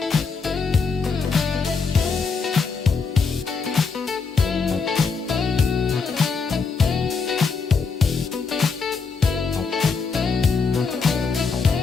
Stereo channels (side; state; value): right; quieter; 5.0 dB